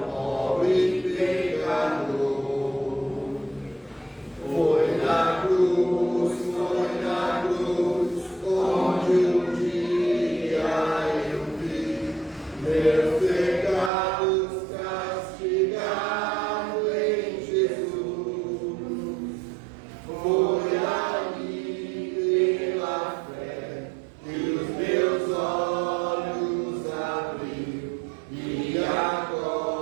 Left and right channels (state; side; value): drops out; left; at 13.9 s